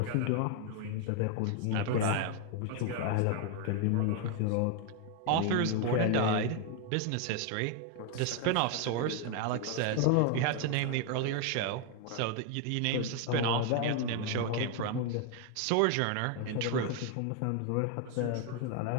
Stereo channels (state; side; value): different; both; correlation 0.01